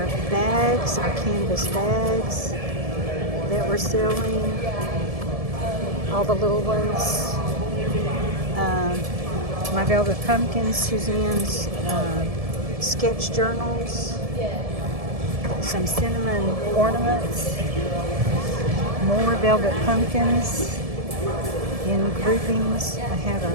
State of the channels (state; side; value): late; left; 1.7 ms